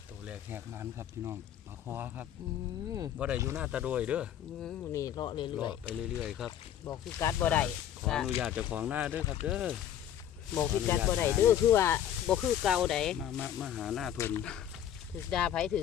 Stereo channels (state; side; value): quieter; right; 10.5 dB